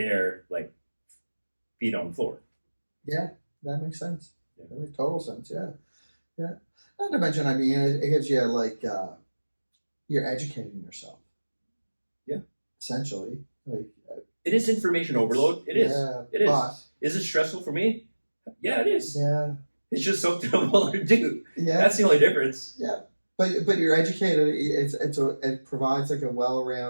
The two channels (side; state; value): both; inverted; correlation -1.00